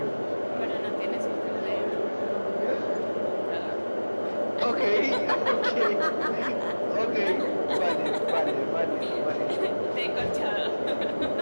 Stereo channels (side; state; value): both; inverted; correlation -1.00